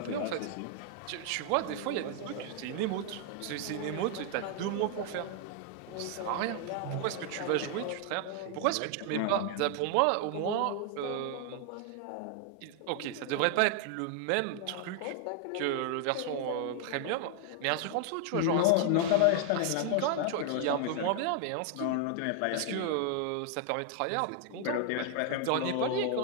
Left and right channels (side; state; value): both; different; correlation 0.00